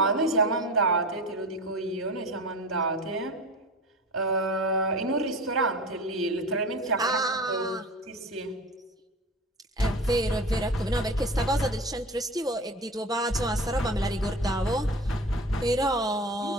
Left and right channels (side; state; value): both; normal; correlation 0.34